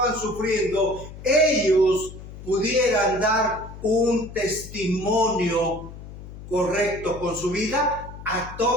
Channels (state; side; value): noise; left; hum, 14 dB below the sound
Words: sufriendo, ellos pudieran dar un testimonio correcto con su vida a